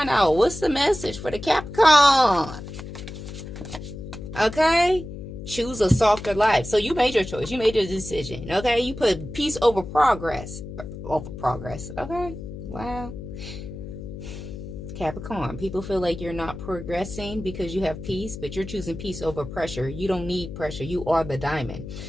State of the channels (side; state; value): left; noise; hum, 10 dB below the sound